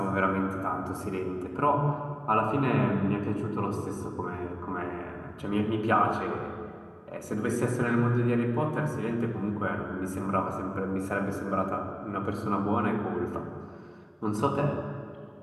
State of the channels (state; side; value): identical; both; correlation 1.00